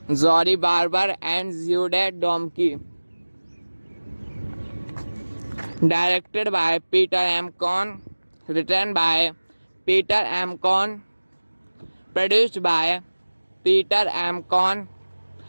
Zori Barber, and Jude Domke. Directed by Peter M. Cohn, written by Peter M. Cohn, produced by Peter M. Cohn,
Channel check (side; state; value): both; inverted; correlation -1.00